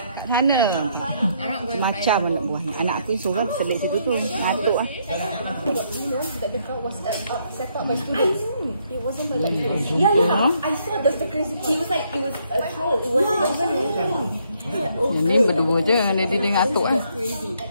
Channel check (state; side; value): inverted; both; correlation -0.71